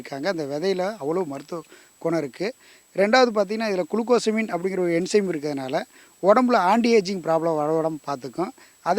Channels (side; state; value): both; identical; correlation 1.00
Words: அந்த விதையில் அவ்வளோ மருத்துவ குணம் இருக்குது. ரெண்டாவது பார்த்திங்கன்னா, இதில் குளுக்கோசமின் அப்படிங்கிற ஒரு என்சைம் இருக்கிறதுனால உடம்புல ஆன்டி ஏஜிங் ப்ராப்ளம் வரவிடாம பார்த்துக்கும்.